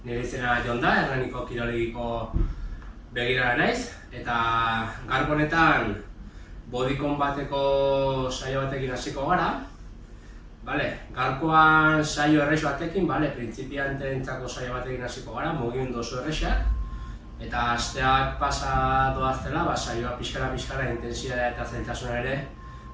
nire izena Jon da, Hernaniko kirolegiko begirara naiz, eta gaurko honetan bodycon bateko saio batekin hasiko gara. Gaurkoan saio errex batekin, printzipioentzako saio batekin hasiko gara, mugimendu oso errexak. Eta asteak pasa doaztela, saioa pixkara intensitatea eta zailtasuna ere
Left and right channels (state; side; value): identical; both; correlation 1.00